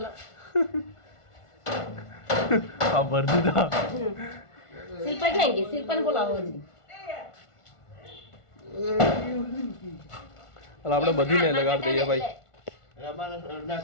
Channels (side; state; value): right; late; 1.4 ms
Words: હા ભર દીધા. શિલ્પા ક્યાં ગઈ? શિલ્પાને બોલાવો હજી. આપણે બધીને લગાડી દઈએ ભાઈ. રમાના